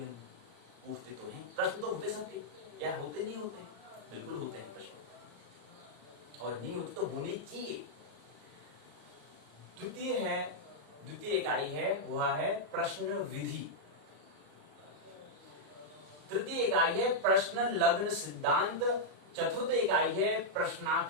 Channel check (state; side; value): late; left; 34 ms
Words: में? पूछते तो हैं। प्रश्न तो होते सबके, या होते नहीं होते? बिल्कुल होते हैं प्रश्न, और नहीं होते तो होने चाहिए। द्वितीय इकाई है वह है प्रश्न विधि। तृतीय इकाई है प्रश्न लग्न सिद्धांत। चतुर्थ इकाई है